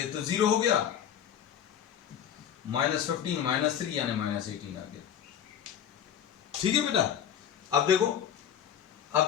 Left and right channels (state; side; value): quieter; right; 9.4 dB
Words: तो 0 हो गया, -15 -3 यानी -18 आ गया। ठीक है बेटा। अब देखो,